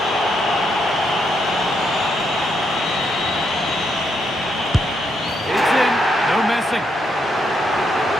It's in, no messing.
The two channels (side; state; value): both; normal; correlation 0.78